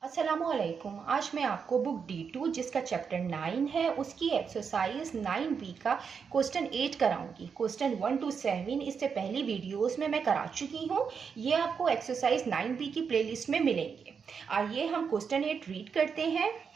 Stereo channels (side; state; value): left; quieter; 6.2 dB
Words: अस्सलामुअलैकुम। आज मैं आपको बुक D2 जिसका चैप्टर 9 है उसकी एक्सरसाइज 9B का क्वेश्चन 8 कराऊंगी। क्वेश्चन 1 to 7 इससे पहली वीडियोस में मैं करा चुकी हूँ। ये आपको एक्सरसाइज 9B की प्लेलिस्ट में मिलेंगे। आइए हम क्वेश्चन 8 रीड करते हैं।